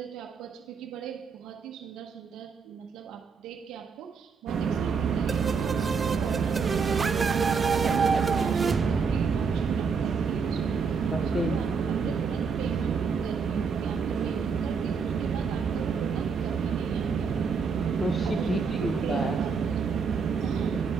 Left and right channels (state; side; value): quieter; left; 5.5 dB